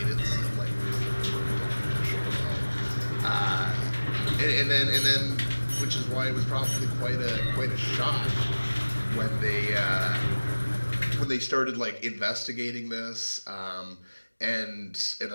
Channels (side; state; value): both; inverted; correlation -1.00